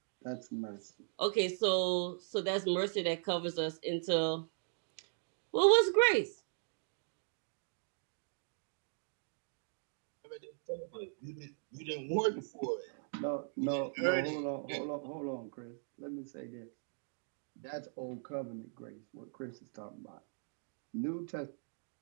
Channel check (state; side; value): silent; left; digital silence